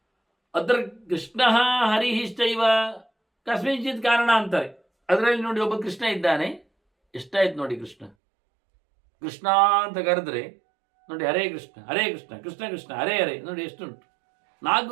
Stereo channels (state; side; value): drops out; left; at 8.1 s